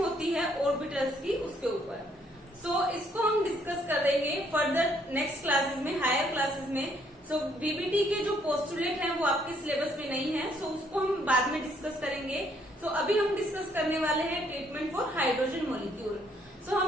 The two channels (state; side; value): normal; both; correlation 0.68